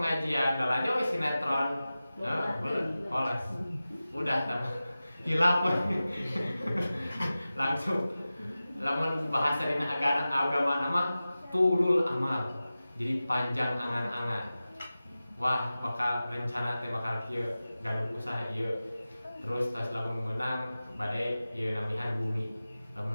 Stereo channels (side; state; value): both; inverted; correlation -0.96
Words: dalanya weh sinetron. Belum, polos. Udah hilap langsung. Lamun bahasa dina agama nama tulul amal, jadi panjang angan-angan. Wah bakal rencana teh bakal kieu gaduh usaha ieu. Terus tas lamun menang bade ieu namihan bumi.